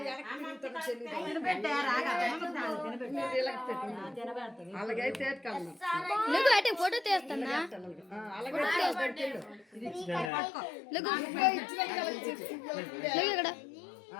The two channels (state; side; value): drops out; right; at 10.3 s